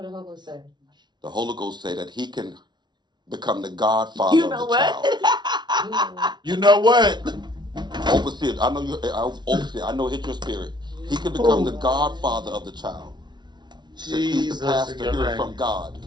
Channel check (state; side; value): late; left; 0.21 ms